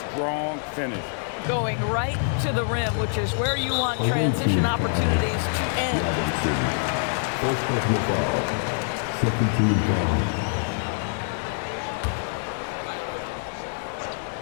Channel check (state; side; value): silent; right; 61 dB below the other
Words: finish. Going right to the rim, which is where you want transition opportunities to end. First personal foul. Second team foul.